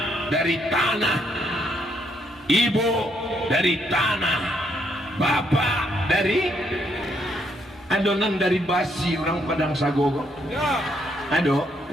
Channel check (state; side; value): normal; both; correlation 0.73